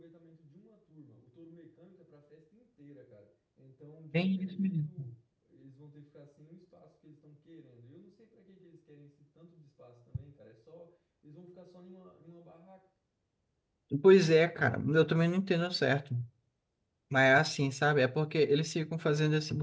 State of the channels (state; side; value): identical; both; correlation 1.00